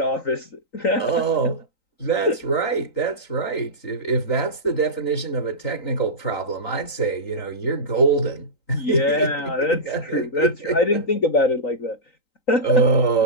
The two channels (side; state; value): right; late; 3.9 ms